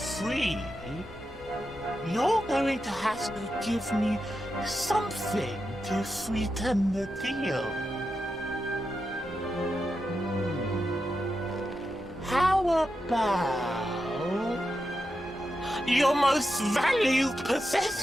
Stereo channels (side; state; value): both; normal; correlation 0.88